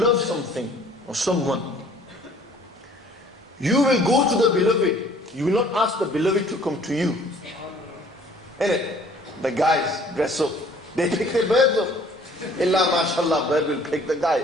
something or someone, you will go to the beloved. You will not ask the beloved to come to you. Innit? The guys dress up. They pick their birds up. Illa mashallah, bird will pick the guy.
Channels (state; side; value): normal; both; correlation 0.55